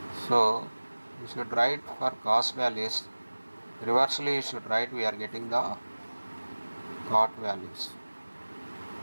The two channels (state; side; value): inverted; both; correlation -1.00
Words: So you should write for cos values reversely, you should write we are getting the cot values,